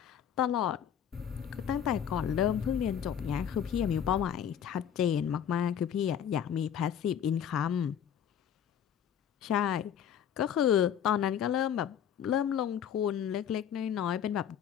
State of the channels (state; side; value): quieter; right; 9.0 dB